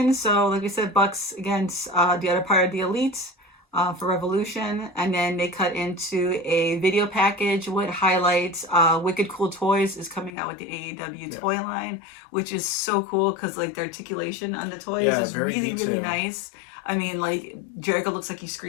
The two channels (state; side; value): drops out; right; at 10.3 s